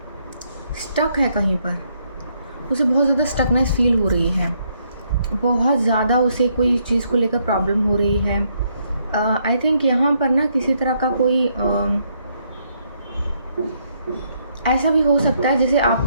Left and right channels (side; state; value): both; inverted; correlation -0.73